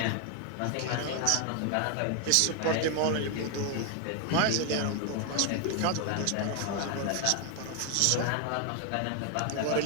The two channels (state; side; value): different; both; correlation 0.01